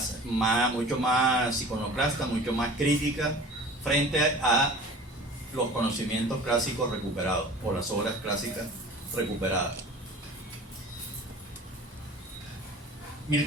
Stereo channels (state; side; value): normal; both; correlation 0.42